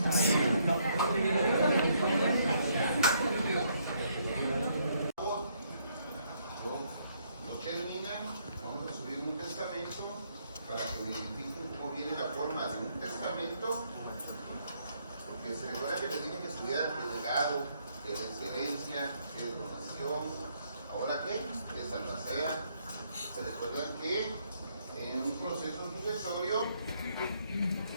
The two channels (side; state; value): both; inverted; correlation -0.71